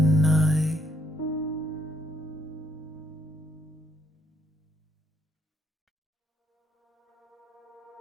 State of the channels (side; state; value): both; normal; correlation 0.72